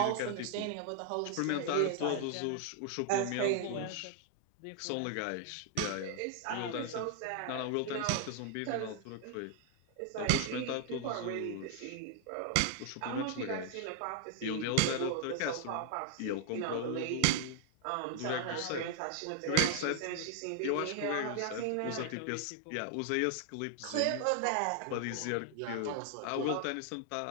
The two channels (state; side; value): different; both; correlation 0.00